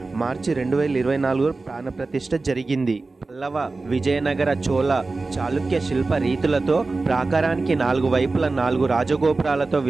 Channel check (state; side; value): quieter; left; 3.6 dB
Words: మార్చి 2024 ప్రాణప్రతిష్ఠ జరిగింది. పల్లవ, విజయనగర, చోళ, చాళుక్య శిల్ప రీతులతో ప్రాకారానికి 4 వైపుల 4 రాజగోపురాలతో